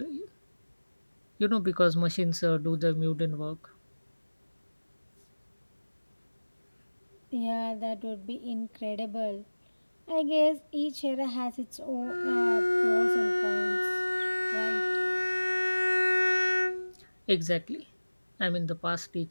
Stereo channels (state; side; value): inverted; both; correlation -1.00